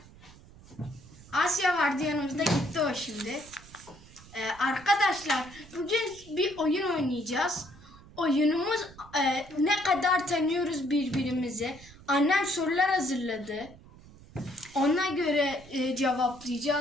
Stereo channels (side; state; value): right; noise; rumble, 21 dB below the sound